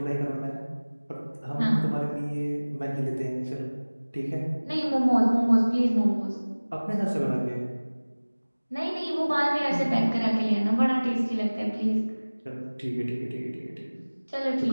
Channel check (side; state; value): both; inverted; correlation -1.00